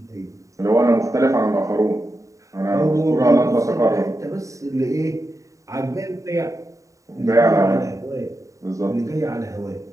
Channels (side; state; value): left; late; 0.16 ms